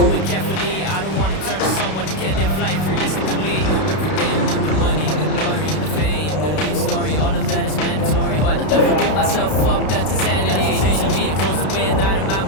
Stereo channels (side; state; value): right; late; 32 ms